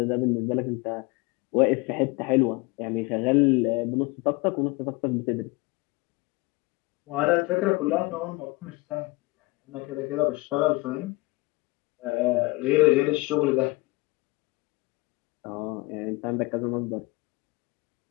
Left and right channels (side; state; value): right; quieter; 23.8 dB